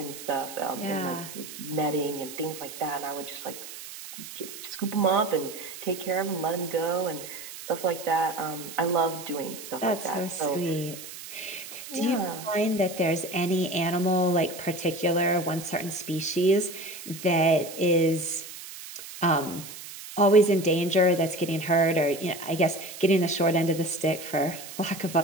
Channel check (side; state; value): right; noise; hiss, 13 dB below the sound